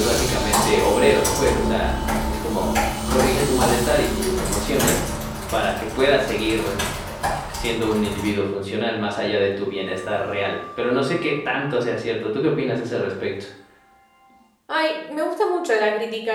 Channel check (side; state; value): both; identical; correlation 1.00